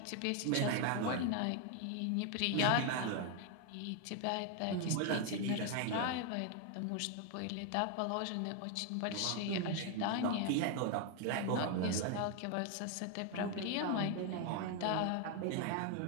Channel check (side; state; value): both; different; correlation 0.01